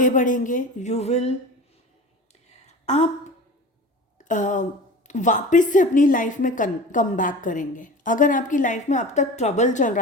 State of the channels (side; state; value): both; normal; correlation 0.35